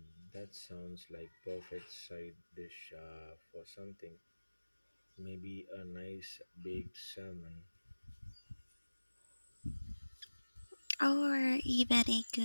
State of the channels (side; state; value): both; inverted; correlation -1.00